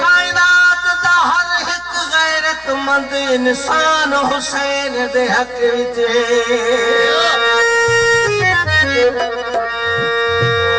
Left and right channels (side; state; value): left; noise; hum, 28 dB below the sound